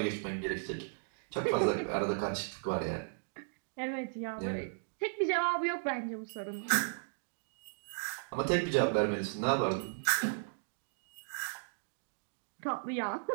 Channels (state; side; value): silent; left; digital silence